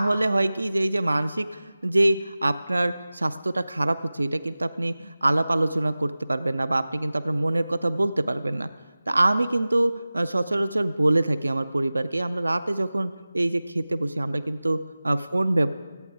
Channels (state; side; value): inverted; both; correlation -0.97